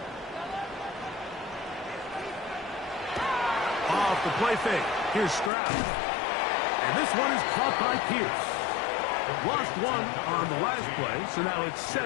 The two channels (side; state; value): right; drops out; at 5.5 s